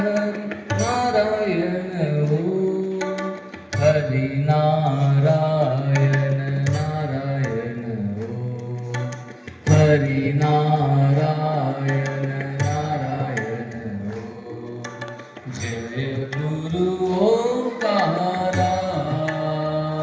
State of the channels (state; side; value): identical; both; correlation 1.00